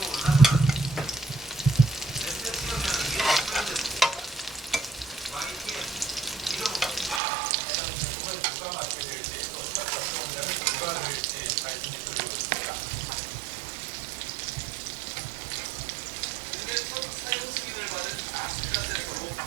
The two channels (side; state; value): left; drops out; at 7.2 s